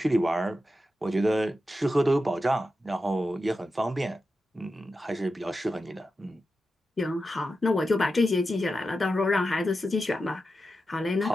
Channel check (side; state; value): both; normal; correlation 0.90